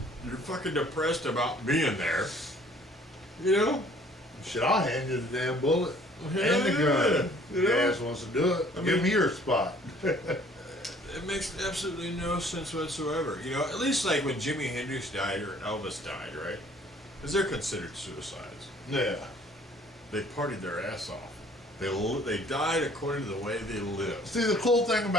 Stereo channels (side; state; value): both; normal; correlation 0.56